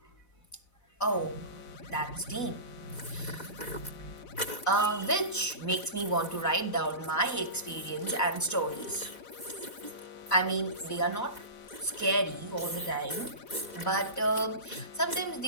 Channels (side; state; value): right; late; 4.1 ms